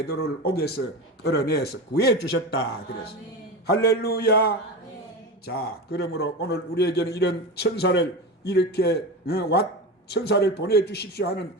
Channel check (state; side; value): normal; both; correlation 0.24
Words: 옥에서 끌어내서 구해 주셨다 그랬어. 할렐루야. 자, 그러므로 오늘 우리에게는 이런 천사를 이렇게 천사를 보내 주십시오 하는